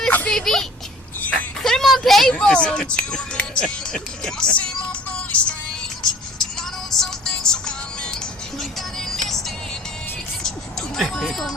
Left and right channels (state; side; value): normal; both; correlation 0.50